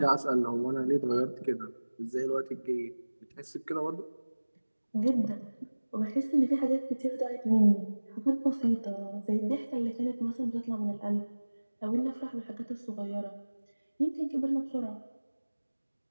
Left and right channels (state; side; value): inverted; both; correlation -1.00